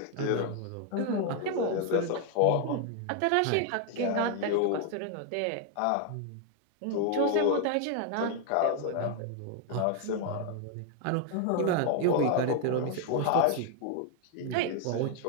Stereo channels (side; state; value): both; different; correlation 0.00